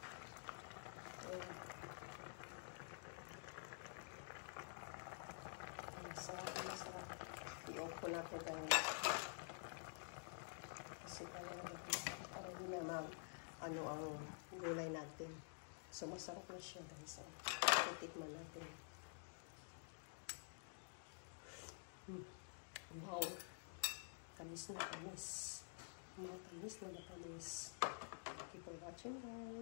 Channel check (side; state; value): right; silent; digital silence